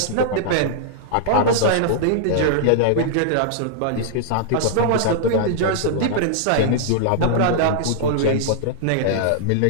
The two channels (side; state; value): both; different; correlation -0.01